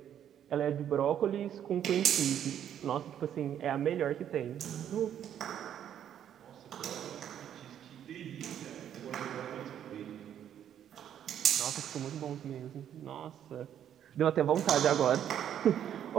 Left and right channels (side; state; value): left; quieter; 9.9 dB